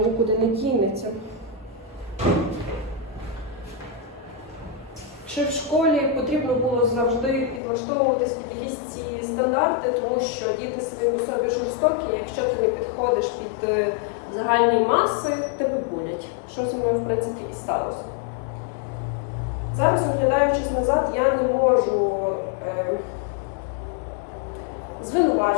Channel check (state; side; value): drops out; right; at 7.6 s